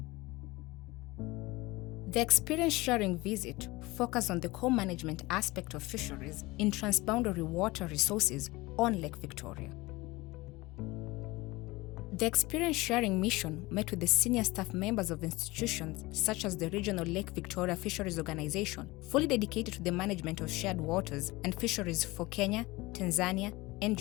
The experience sharing visit focused on the co-management aspect of fisheries in transboundary water resources on Lake Victoria. The experience sharing mission met with the senior staff members of institutions such as the Regional Lake Victoria Fisheries Organization, fully dedicated to the management of shared waters and fisheries for Kenya, Tanzania, and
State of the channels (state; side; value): quieter; right; 21.4 dB